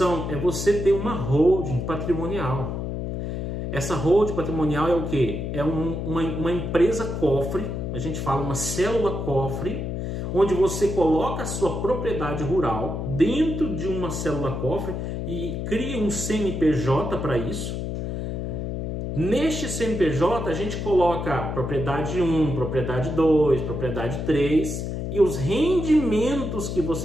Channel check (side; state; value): left; noise; hum, 3 dB below the sound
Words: é você ter uma holding patrimonial. Essa holding patrimonial é o quê? É uma empresa cofre, a gente fala uma célula cofre, onde você coloca a sua propriedade rural dentro de uma célula cofre e cria um CNPJ para isso. Neste CNPJ a gente coloca propriedade 1, propriedade 2, propriedade 3 e os rendimentos que